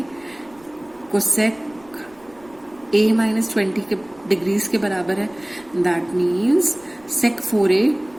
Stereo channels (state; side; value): noise; right; rumble, 28 dB below the sound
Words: कोसेक a माइनस 20 के डिग्रीज के बराबर है, दैट मीन्स सेक 4a